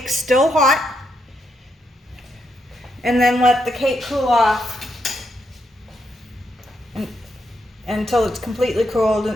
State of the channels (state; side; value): normal; both; correlation 0.80